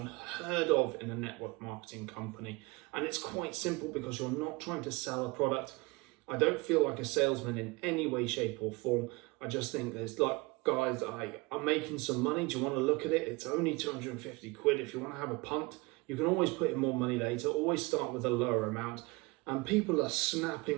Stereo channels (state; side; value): quieter; left; 25.0 dB